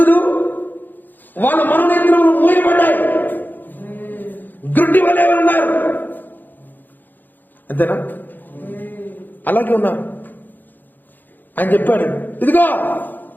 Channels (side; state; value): right; late; 0.088 ms